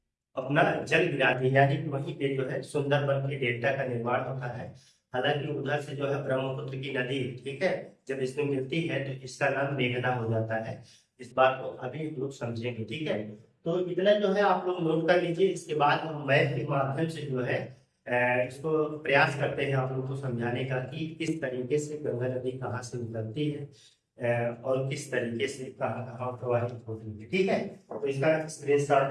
अपना जल गिराती है, यानी कि वहीं पे जो है सुंदरबन के डेल्टा का निर्माण होता है। हालांकि उधर से जो है ब्रह्मपुत्र की नदी, ठीक है, जब इसमें मिलती है तो इसका नाम मेघना हो जाता है। इस बात को अभी लोग समझेंगे, ठीक है। तो इतना जो है आप लोग नोट कर लीजिए। इसके बाद हम मैथ के माध्यम से जो है इसको प्रयास करते हैं आप लोग को समझाने का कि किस तरीके से गंगा नदी कहाँ से निकलती है और किस तरीके से कहाँ कहाँ प्रवाहित होती है, ठीक है। तो इसका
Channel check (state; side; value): identical; both; correlation 1.00